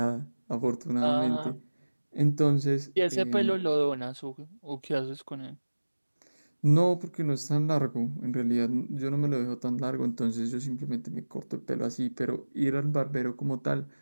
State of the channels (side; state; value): both; inverted; correlation -1.00